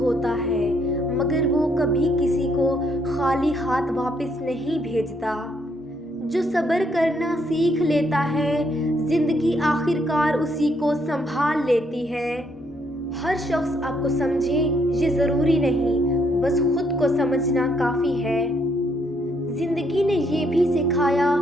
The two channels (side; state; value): both; normal; correlation 0.72